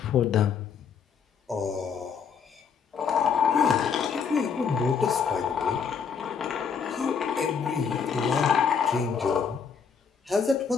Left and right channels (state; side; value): quieter; right; 6.5 dB